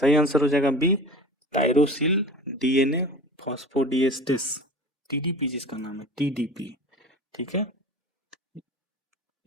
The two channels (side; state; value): both; normal; correlation 0.37